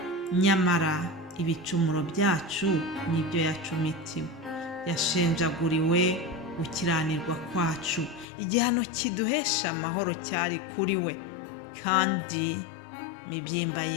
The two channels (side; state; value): right; drops out; at 8.2 s